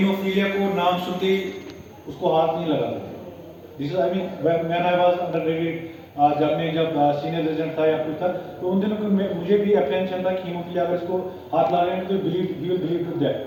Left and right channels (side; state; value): both; identical; correlation 1.00